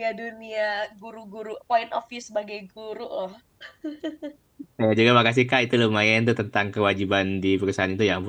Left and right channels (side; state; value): both; identical; correlation 1.00